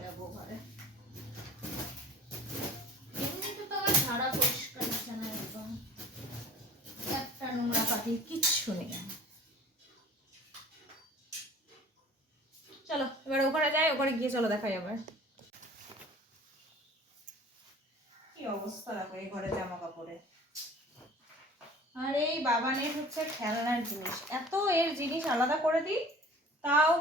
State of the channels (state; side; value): normal; both; correlation 0.46